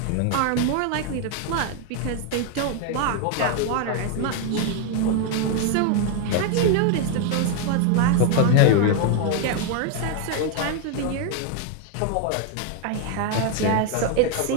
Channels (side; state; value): both; different; correlation 0.01